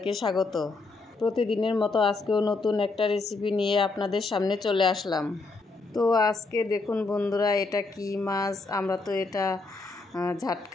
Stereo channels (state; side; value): quieter; right; 3.7 dB